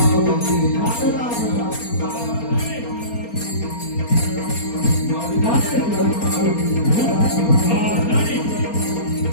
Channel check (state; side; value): late; right; 4.3 ms